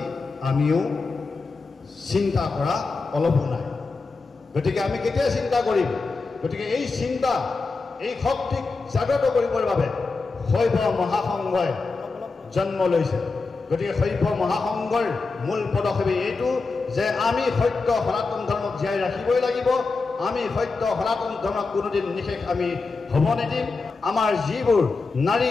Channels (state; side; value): quieter; right; 4.1 dB